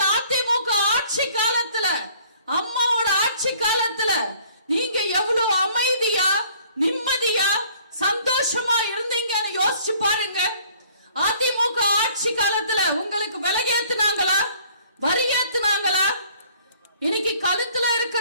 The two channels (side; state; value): both; inverted; correlation -0.57